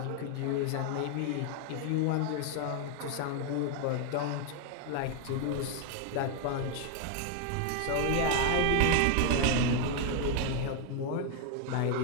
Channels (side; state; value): both; different; correlation 0.00